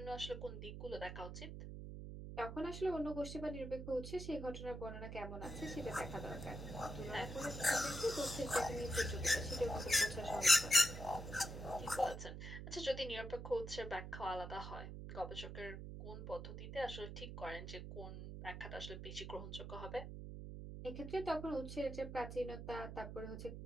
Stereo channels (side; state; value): right; noise; hum, 8 dB below the sound